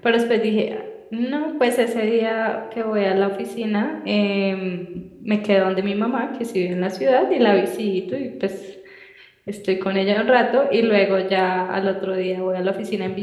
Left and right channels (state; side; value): identical; both; correlation 1.00